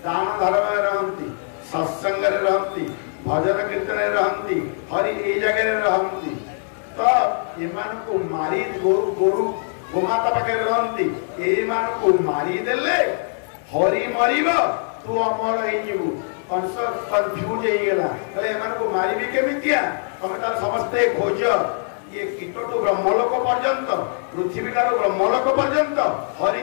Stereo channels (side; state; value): right; silent; digital silence